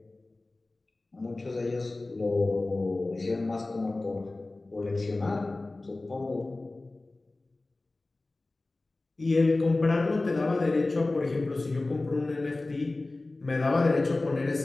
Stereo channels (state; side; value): quieter; right; 3.1 dB